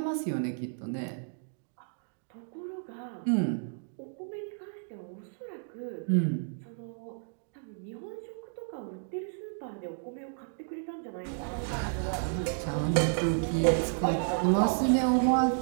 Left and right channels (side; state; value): left; silent; digital silence